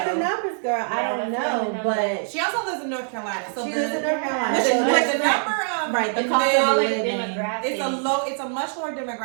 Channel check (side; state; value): left; silent; digital silence